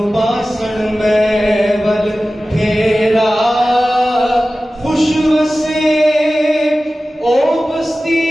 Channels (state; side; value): normal; both; correlation 0.96